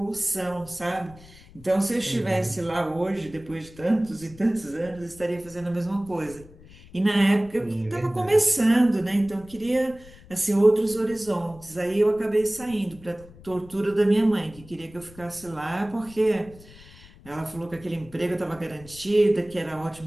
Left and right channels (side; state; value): left; noise; rumble, 21 dB below the sound